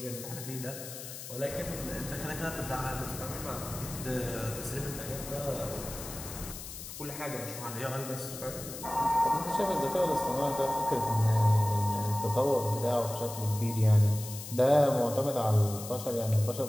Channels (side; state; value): left; noise; hiss, 11 dB below the sound